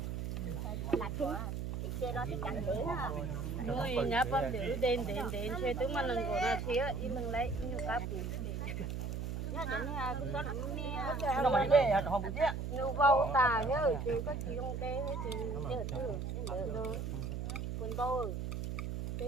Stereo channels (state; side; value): noise; right; hum, 3 dB below the sound